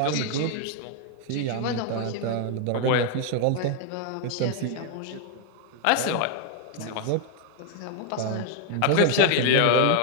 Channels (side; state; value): both; different; correlation 0.00